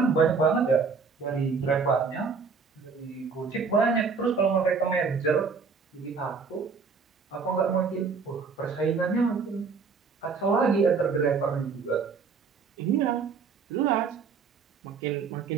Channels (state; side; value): quieter; left; 5.2 dB